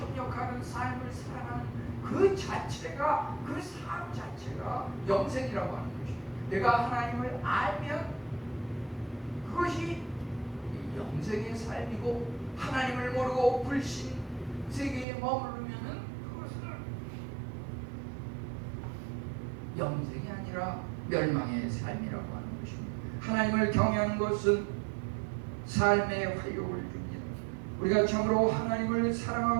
삶을 살아가는 그 자체가 그 삶 자체가 영생이라고 하는 것입니다. 내가 하나님을 알면 그것이 영생의 삶이고 하나님을 모르고 불신 세계에 머무르면은 그것은 영생이 아니라 멸망의 삶이라고 하는 것입니다. 하나님을 경외하는 것은 삶의 활력을 줍니다. 우리가 참으로 하나님을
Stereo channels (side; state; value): left; drops out; at 15.1 s